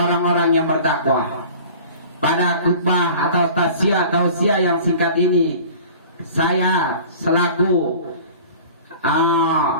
yang bertakwa. Pada khutbah atau tausiah yang singkat ini, saya selaku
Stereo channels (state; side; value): inverted; both; correlation -0.42